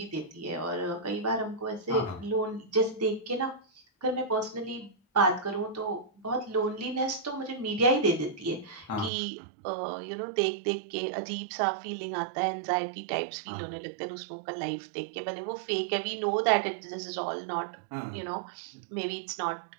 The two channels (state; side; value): drops out; left; at 9.1 s